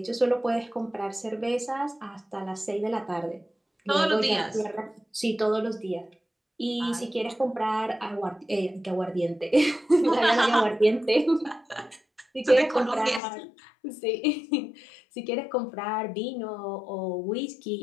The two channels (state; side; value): drops out; right; at 13.2 s